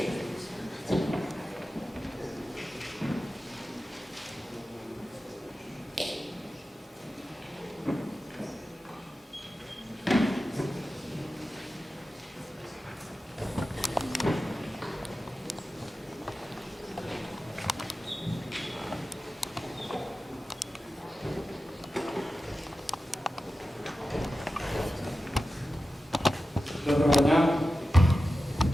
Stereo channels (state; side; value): normal; both; correlation 0.93